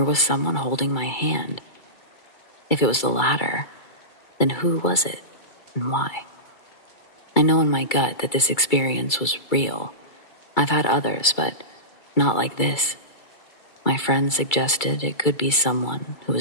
was someone holding my hand? If it was the latter, then who was it and why? I know in my gut that this experience was real. I've had others, but not like this. My friend suggested it could be someone who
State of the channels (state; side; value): late; right; 2.3 ms